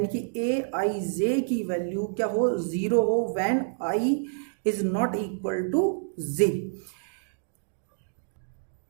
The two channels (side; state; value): left; silent; digital silence